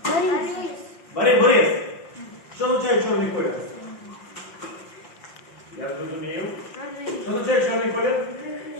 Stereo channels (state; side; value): late; right; 5.7 ms